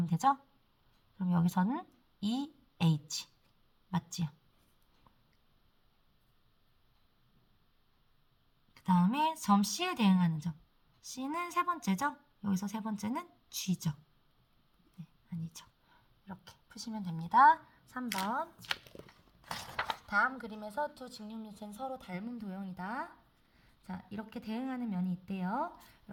되죠? 그럼 여기서는 EH. 맞지요? 그 다음에 점 C에 대응하는 점. C는 세 번째죠? 여기서 세 번째는 G죠. 네, 아니죠. 이렇게 푸시면 됩니다. 3번. 다음 그림에서 두 직육면체는 서로 닮은 도형이다. 자, 이렇게 대응하는 면이 있대요.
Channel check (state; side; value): identical; both; correlation 1.00